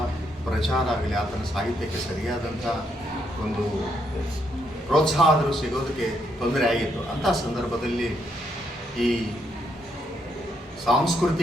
ಪ್ರಚಾರ ಆಗಲಿ, ಆತನ ಸಾಹಿತ್ಯಕ್ಕೆ ಸರಿಯಾದಂಥ ಒಂದು ಪ್ರೋತ್ಸಾಹ ಆದರೂ ಸಿಗೋದಕ್ಕೆ ತೊಂದರೆ ಆಗಿತ್ತು. ಅಂಥ ಸಂದರ್ಭದಲ್ಲಿ ಈ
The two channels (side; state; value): both; normal; correlation 0.76